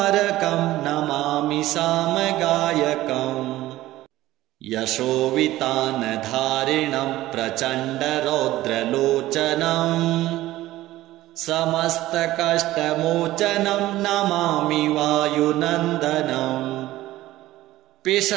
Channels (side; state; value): left; quieter; 16.0 dB